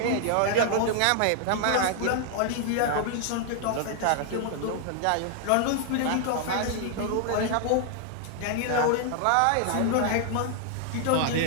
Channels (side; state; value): both; different; correlation 0.00